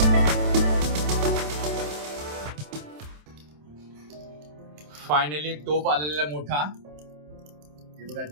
फायनली टोप आलेला मोठा, हे बघा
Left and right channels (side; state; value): left; late; 27 ms